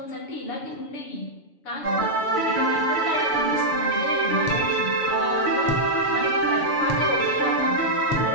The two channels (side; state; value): right; late; 6.9 ms